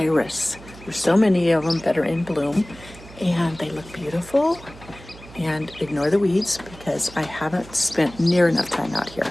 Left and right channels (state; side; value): noise; right; hum, 19 dB below the sound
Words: There's so many of them that are in bloom and they look beautiful. And ignore the weeds because I haven't spent near enough time out here.